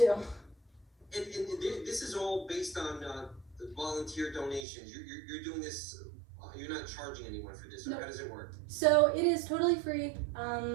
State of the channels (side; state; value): left; drops out; at 4.7 s